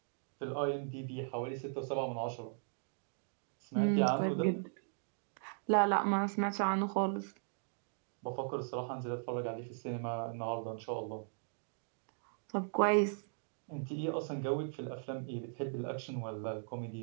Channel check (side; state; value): left; silent; digital silence